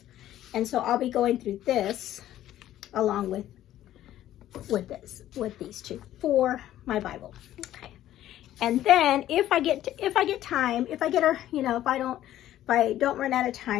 And so I'll be going through this along with these two for my Bible. Okay. And then if I get time, if I don't run out of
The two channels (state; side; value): quieter; right; 12.9 dB